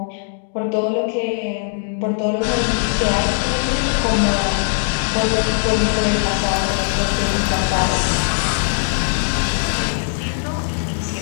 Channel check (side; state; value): right; silent; digital silence